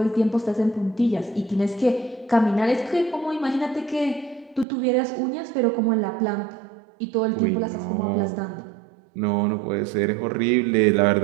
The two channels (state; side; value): drops out; left; at 4.7 s